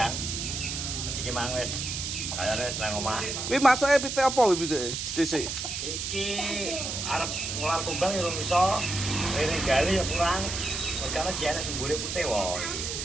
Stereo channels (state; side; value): noise; right; hiss, 4 dB below the sound